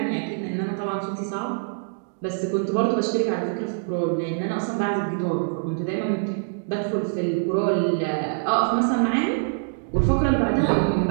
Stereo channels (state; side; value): silent; left; digital silence